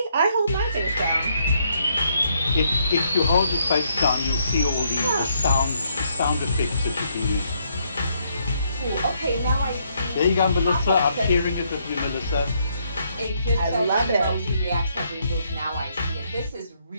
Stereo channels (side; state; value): both; inverted; correlation -0.73